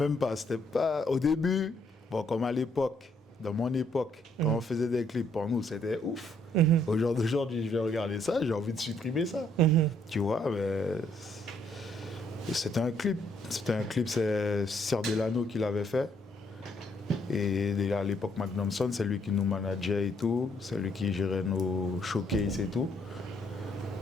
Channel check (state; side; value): normal; both; correlation 0.69